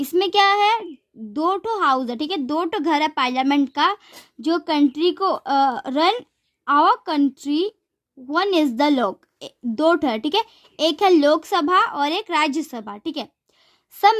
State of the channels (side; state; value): both; identical; correlation 1.00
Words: क्या है, 2 हाउस है, ठीक है, 2 घर है पार्लियामेंट का जो कंट्री को run our country. 1 is the Lok, 2 है, ठीक है, एक है लोकसभा और एक राज्यसभा, ठीक है। सब